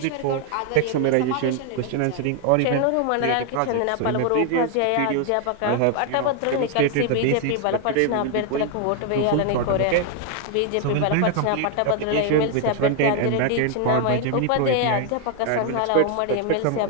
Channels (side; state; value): both; different; correlation 0.00